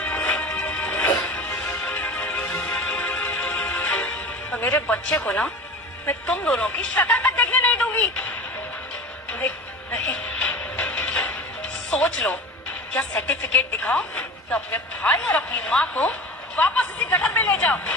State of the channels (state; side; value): normal; both; correlation 0.34